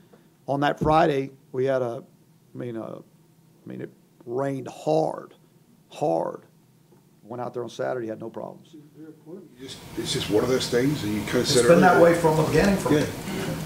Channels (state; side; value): identical; both; correlation 1.00